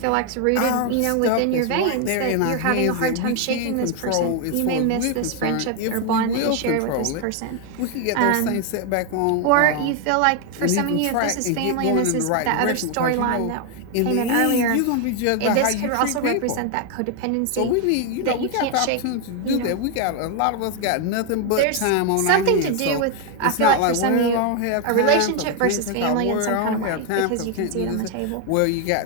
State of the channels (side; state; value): both; different; correlation 0.01